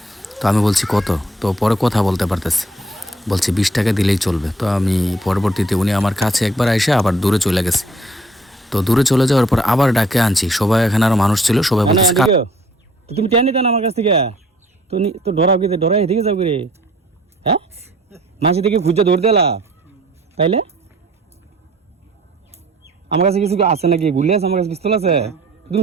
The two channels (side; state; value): both; normal; correlation 0.57